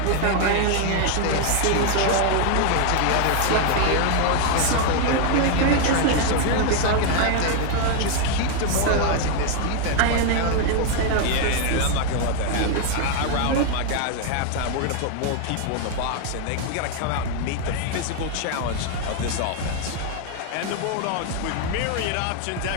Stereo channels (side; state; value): both; different; correlation 0.00